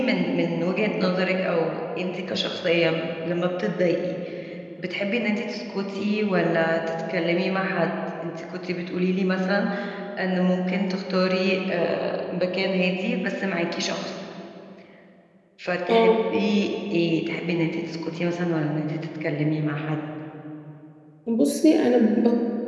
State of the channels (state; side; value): identical; both; correlation 1.00